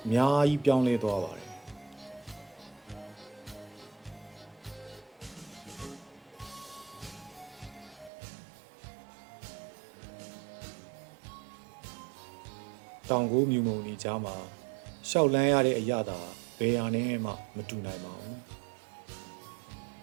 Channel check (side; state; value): left; drops out; at 8.1 s